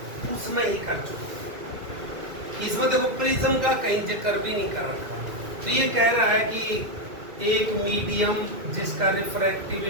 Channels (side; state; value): left; late; 2.2 ms